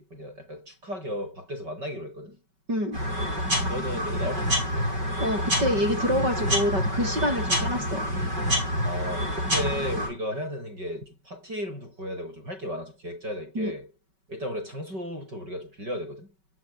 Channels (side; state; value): left; late; 5.3 ms